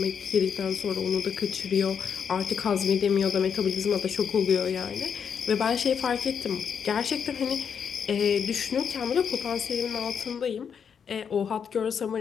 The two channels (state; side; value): quieter; right; 7.1 dB